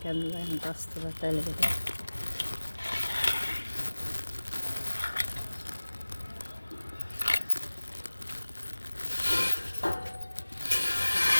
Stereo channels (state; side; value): inverted; both; correlation -1.00